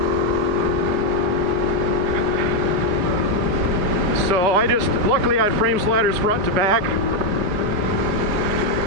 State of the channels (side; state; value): left; late; 4.9 ms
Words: So luckily I had frame sliders front to back,